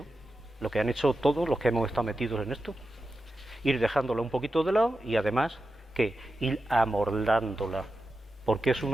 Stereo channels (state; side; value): normal; both; correlation 0.90